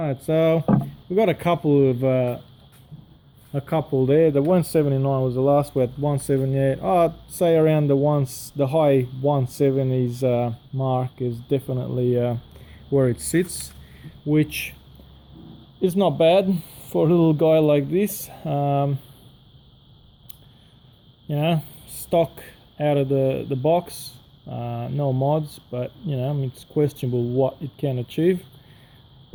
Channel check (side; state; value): both; identical; correlation 1.00